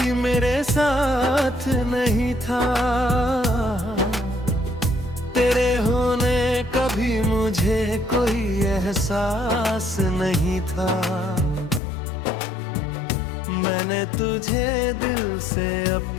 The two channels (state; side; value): drops out; right; at 11.8 s